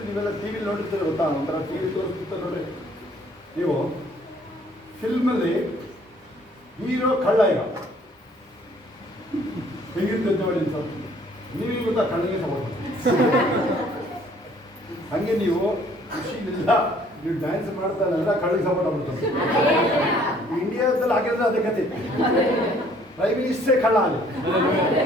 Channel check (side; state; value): both; normal; correlation 0.60